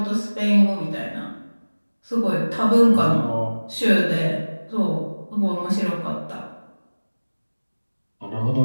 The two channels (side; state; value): both; inverted; correlation -1.00